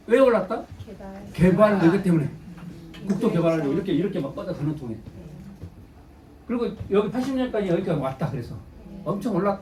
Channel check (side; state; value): both; identical; correlation 1.00